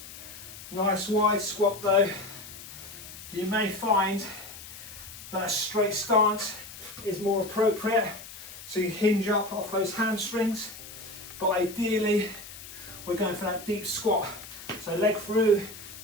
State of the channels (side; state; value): left; noise; hiss, 14 dB below the sound